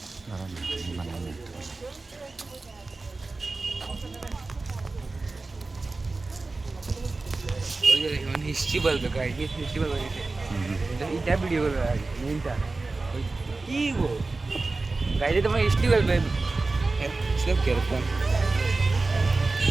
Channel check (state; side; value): quieter; left; 3.5 dB